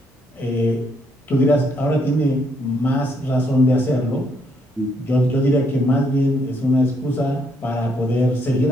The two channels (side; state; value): both; normal; correlation 0.73